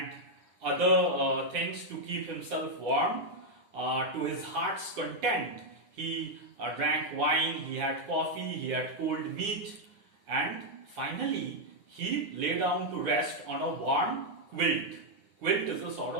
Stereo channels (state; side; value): late; left; 9.6 ms